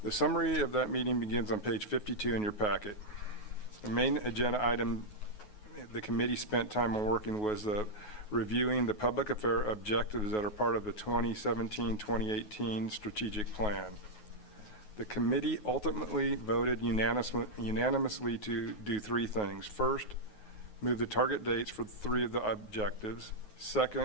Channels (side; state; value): right; late; 9.4 ms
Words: The summary of that meeting begins on page 52 in your packet. The main agenda item the committee spent time on working was reviewing the public affair objectives that are part of the 2017-2018 strategic plan. The committee ultimately voted unanimously to do three things. First, move the target dates for three of the objectives.